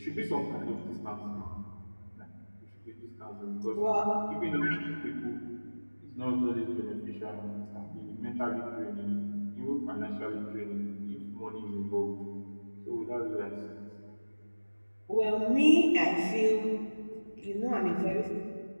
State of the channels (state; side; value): inverted; both; correlation -1.00